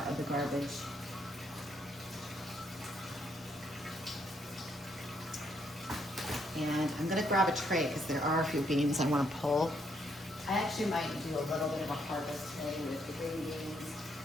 garbage. And I'm gonna grab a tray because there are a few beans I want to pull. I actually might do a little bit of a harvest today with the green beans.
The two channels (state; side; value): normal; both; correlation 0.73